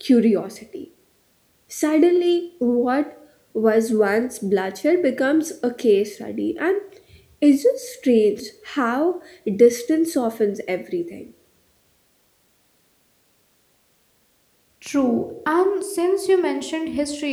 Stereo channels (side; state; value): both; identical; correlation 1.00